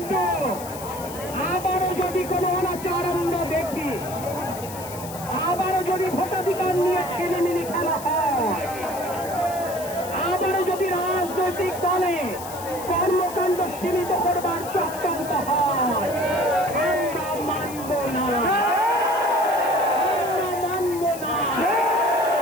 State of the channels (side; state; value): left; noise; hiss, 13 dB below the sound